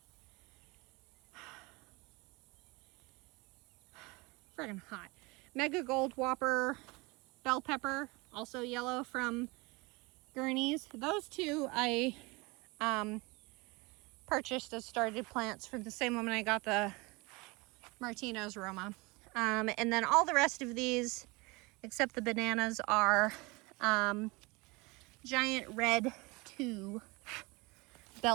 hot. Mega Gold Whopper bell pepper, also yellow from Gurney's. Those two I purchased as started plants from the same woman I got the Martino's Roma. And then all the rest of these, except the bananas, are giant red 2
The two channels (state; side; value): quieter; left; 25.5 dB